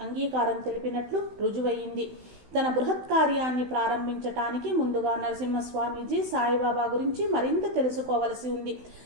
అంగీకారం తెలిపినట్లు రుజువయింది. తన బృహత్ కార్యాన్ని ప్రారంభించటానికి ముందుగా నరసింహస్వామీజీ సాయిబాబా గురించి మరింత తెలుసుకోవలసి ఉంది.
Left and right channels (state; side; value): late; left; 16 ms